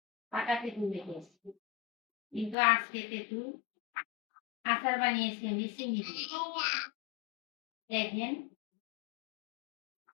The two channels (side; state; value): right; drops out; at 2.6 s